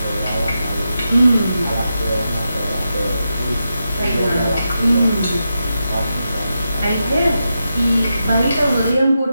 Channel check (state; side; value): inverted; both; correlation -0.88